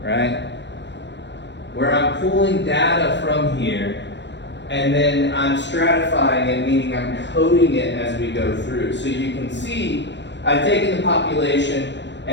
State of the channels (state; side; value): late; right; 0.52 ms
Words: right? Where I'm pulling data from here, and then I'm stratifying it, meaning I'm coding it as we go through. So you can see I've taken the population